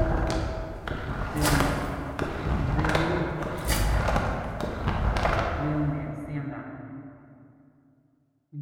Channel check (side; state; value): both; identical; correlation 1.00